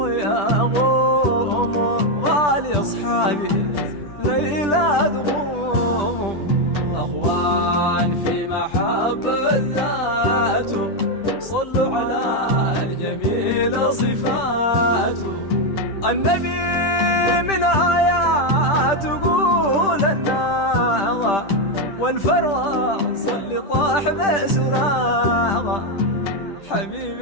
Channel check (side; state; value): right; late; 10 ms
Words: غالي أصحابي ليلة تغوم. أخوان في محبة ذاته صلوا على الجميل صفاته. النبي من آيات تقول الناغة والفرس اللي طاح بسراغة.